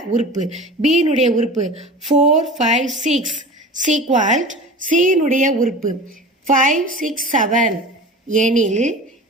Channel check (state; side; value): normal; both; correlation 0.35